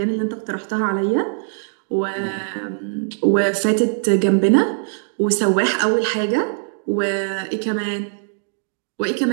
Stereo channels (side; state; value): left; silent; digital silence